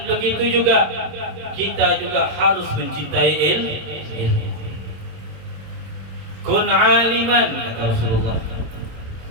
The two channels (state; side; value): late; left; 26 ms